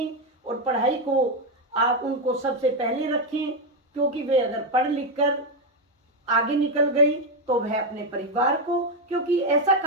और पढ़ाई को आप उनको सबसे पहले रखें, क्योंकि वे अगर पढ़ लिख कर आगे निकल गई तो वह अपने परिवार को, क्योंकि ऐसा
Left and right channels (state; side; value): normal; both; correlation 0.06